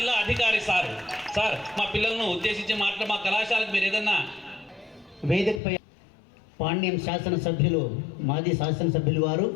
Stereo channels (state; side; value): drops out; right; at 5.6 s